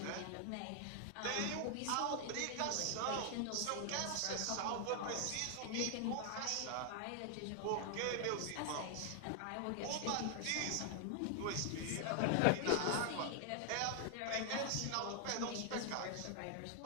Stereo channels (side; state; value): both; different; correlation 0.00